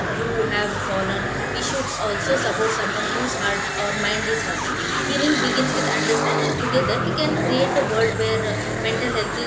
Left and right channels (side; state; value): both; identical; correlation 1.00